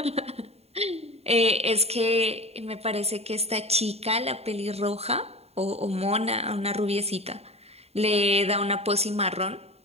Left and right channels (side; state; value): left; late; 0.30 ms